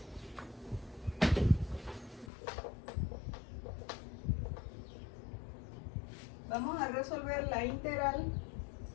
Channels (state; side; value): drops out; right; at 2.3 s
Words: Vamos a resolver la integral